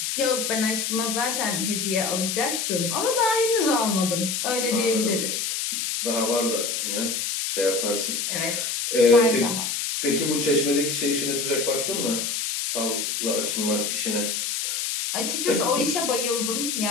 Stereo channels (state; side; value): noise; left; hiss, 1 dB below the sound